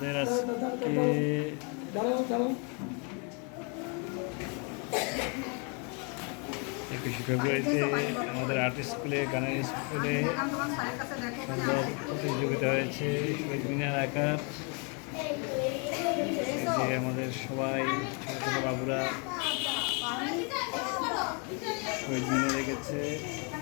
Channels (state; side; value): quieter; right; 35.5 dB